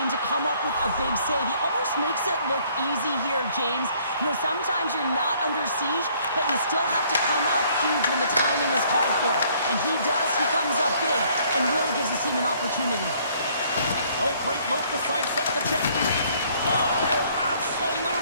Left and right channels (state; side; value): inverted; both; correlation -0.62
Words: to come up with a big save. He almost makes it look easy here, James. You know, sometimes you're not under siege, but you still have to come up huge when the timing is called for. And he does. He comes up big and really gives his team an opportunity. Oh, great move to sidestep the check. Oh,